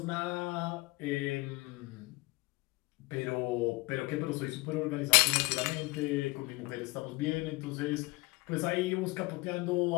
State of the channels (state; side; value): quieter; right; 23.8 dB